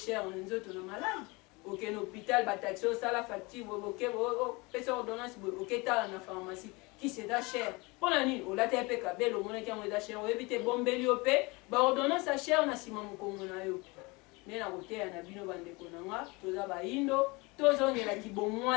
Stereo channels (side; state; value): right; quieter; 25.9 dB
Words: na nzoto na maladi okende hôpital bataxi osala facture opesa ordonnance boye oketala na pharmacie kisi eza cher mpona nini olati mpe kabelo omonaki yango eza cher oyebi te bombeli yo mpe baordonnance ya cher na nsima mokongo na yo nde na koteya na bino bandeko nanga toza bayindo tozongelaki